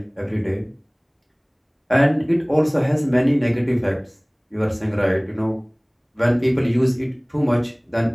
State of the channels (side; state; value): both; identical; correlation 1.00